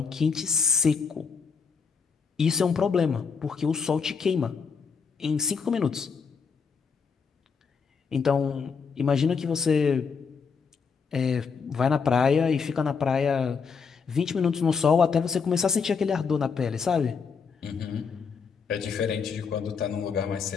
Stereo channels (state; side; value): quieter; right; 5.6 dB